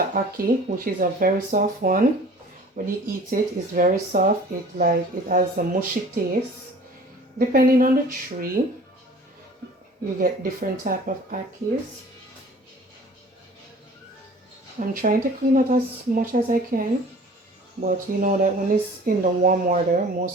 ackee, which is a very soft one. When you eat it, it's very soft. It has a mushy taste. Depending on the tree, you get different type of ackees. I'm trying to clean out as much as I can, but you know that when it's in the warm water,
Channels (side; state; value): both; normal; correlation 0.47